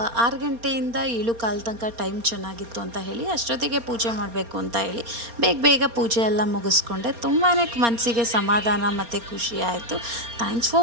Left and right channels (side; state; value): left; late; 4.3 ms